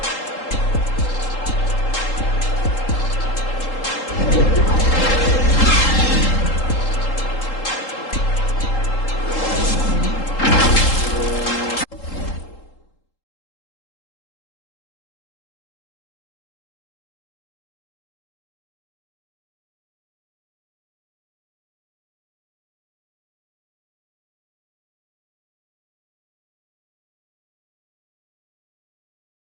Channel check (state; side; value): late; right; 3.8 ms